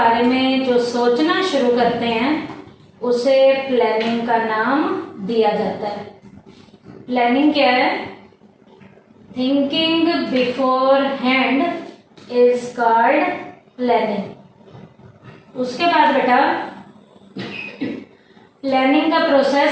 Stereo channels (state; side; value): identical; both; correlation 1.00